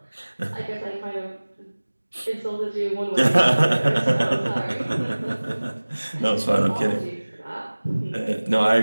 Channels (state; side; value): inverted; both; correlation -1.00